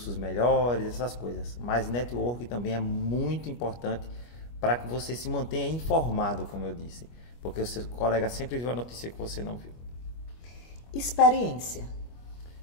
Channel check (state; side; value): late; right; 25 ms